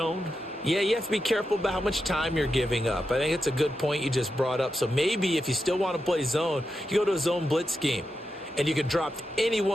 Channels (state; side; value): normal; both; correlation 0.88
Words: Yeah, you have to be careful about how much time you're giving up. I think it's a good point you just brought up. So maybe if you still want to play zone, you go to a zone blitz scheme. And you can drop